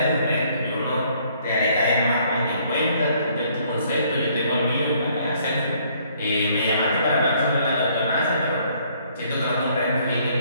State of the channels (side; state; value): both; inverted; correlation -0.64